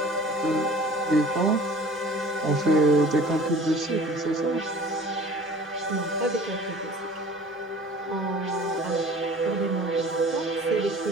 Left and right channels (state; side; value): normal; both; correlation 0.46